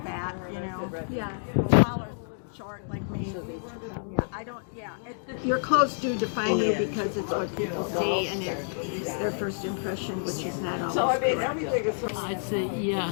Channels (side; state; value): right; silent; digital silence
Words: fat, you know. Yeah. Tall or short like me. I don't, your clothes do define you because it's what people see and it's their first impression, which is not always correct. I'd say